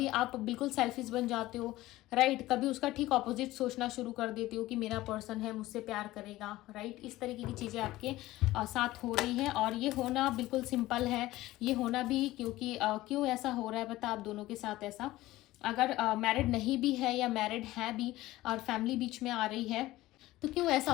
आप बिल्कुल सेल्फिश बन जाते हो, राइट, कभी उसका ठीक ऑपोजिट सोचना शुरू कर देते हो कि मेरा पर्सन है, मुझसे प्यार करेगा, राइट। इस तरीके की चीज़ें आपके साथ हो रही हैं, और ये होना बिल्कुल सिंपल है, ये होना भी क्योंकि क्यों ऐसा हो रहा है पता आप दोनों के साथ ऐसा, अगर मैरिड नहीं भी है या मैरिड है भी और फैमिली बीच में आ रही है, तो क्यों ऐसा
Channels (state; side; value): quieter; right; 17.0 dB